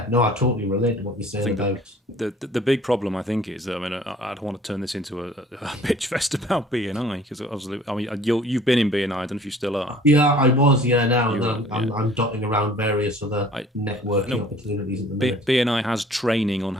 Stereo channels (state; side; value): normal; both; correlation 0.52